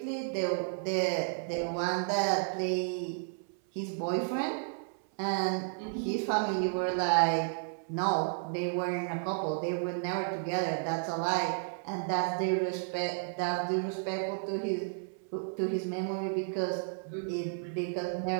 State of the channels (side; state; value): left; silent; 56 dB below the other